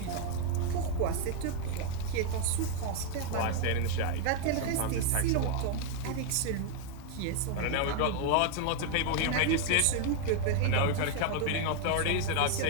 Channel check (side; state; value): both; different; correlation 0.00